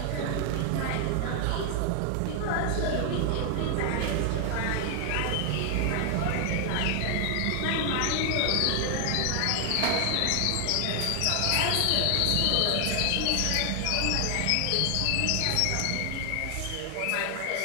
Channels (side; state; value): both; different; correlation 0.00